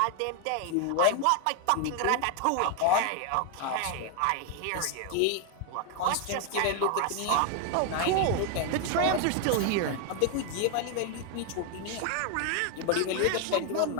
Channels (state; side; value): different; both; correlation 0.01